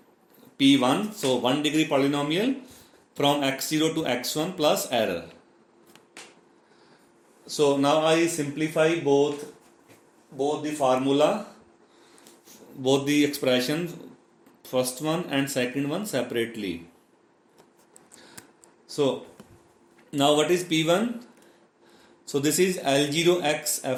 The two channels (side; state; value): both; identical; correlation 1.00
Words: p1, so 1 degree polynomial from x0 to x1 plus error. So now I simplify both the formula, both the expressions, first one and second one separately. So now what is P1? So this is L0x